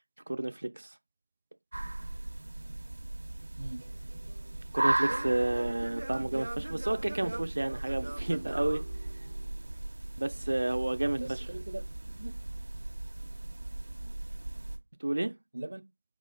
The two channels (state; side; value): inverted; both; correlation -1.00